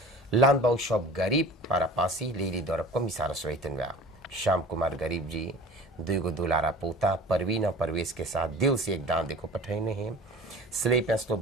लान बाऊ शॉप गरीब पारापासी लेली दौरब को मिसार स्वेतन श्याम कुमार गरीब जी 2 दुलारा पोता परवीन और परवेश के साथ दिल से एक दान देखो पठेने हैं। स्ले पैसलो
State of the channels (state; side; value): normal; both; correlation 0.41